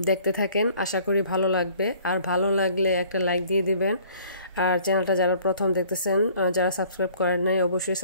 দেখতে থাকেন, আশা করি ভালো লাগবে। আর ভালো লাগলে একটা লাইক দিয়ে দিবেন। আর চ্যানেলটা যারা প্রথম দেখতেছেন, যারা সাবস্ক্রাইব করেন নাই, অবশ্যই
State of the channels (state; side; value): inverted; both; correlation -0.55